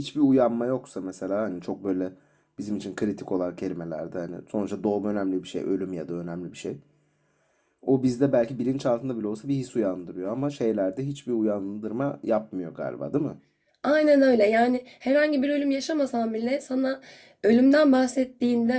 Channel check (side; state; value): both; identical; correlation 1.00